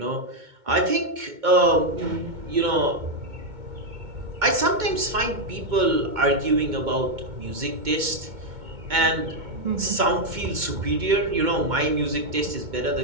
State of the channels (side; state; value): left; late; 2.2 ms